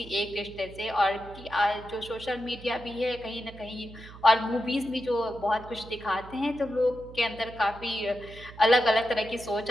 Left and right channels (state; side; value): noise; right; hum, 17 dB below the sound